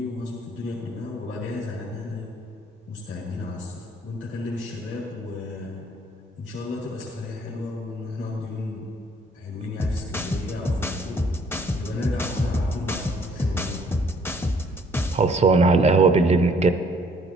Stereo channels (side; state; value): both; normal; correlation 0.62